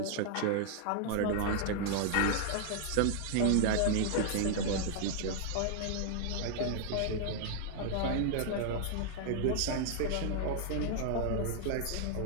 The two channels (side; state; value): both; different; correlation 0.00